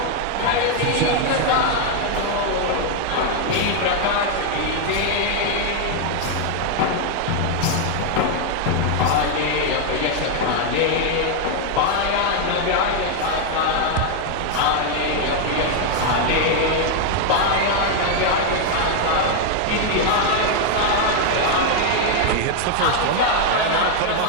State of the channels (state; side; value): different; both; correlation 0.00